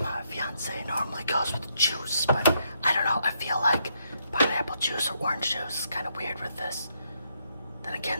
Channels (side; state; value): both; inverted; correlation -0.76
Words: fiance normally goes with juice, but I don't know, I feel like pineapple juice or orange juice is kind of weird with this. Then